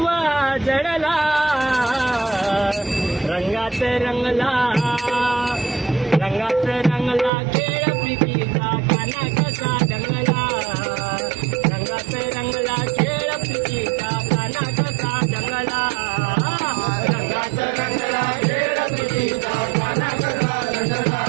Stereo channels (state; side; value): drops out; left; at 7.3 s